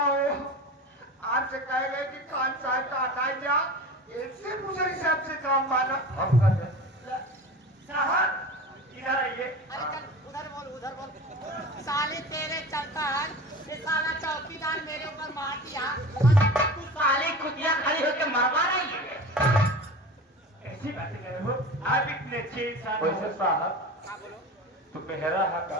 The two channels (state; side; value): normal; both; correlation 0.34